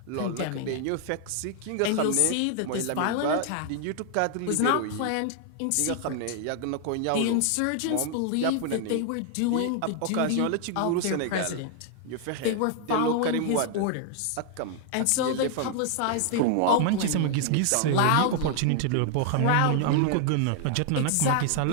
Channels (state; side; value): different; both; correlation 0.00